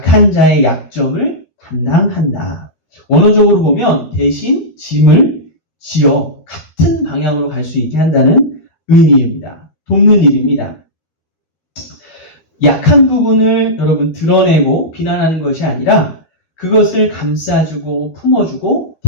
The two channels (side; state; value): right; late; 13 ms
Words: 자의 약점을 담당한다. 원어적으로 보면 대신 짐을 지어 같은 방향으로 갈 수 있게 한다는 의미입니다. 돕는 일입니다. 약한 부분을 여러분 드러내고 비난하는 것이 아니라 그것을 감싸주고 품어주고